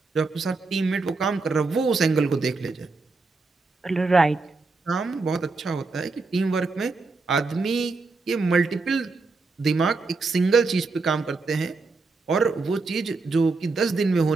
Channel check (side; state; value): left; quieter; 3.9 dB